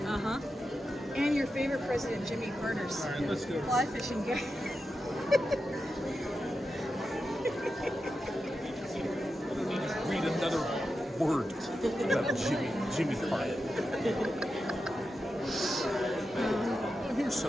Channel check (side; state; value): both; normal; correlation 0.89